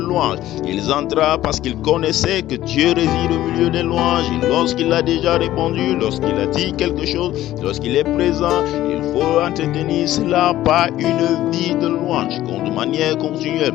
Ils entrèrent parce qu'ils connaissaient que Dieu réside au milieu des louanges. Et lorsqu'il a déjà répondu, lorsqu'il a dit quelque chose, lorsqu'il est présent, il faut entretenir cela par une vie de louange, de manière continuelle.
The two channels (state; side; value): quieter; right; 14.2 dB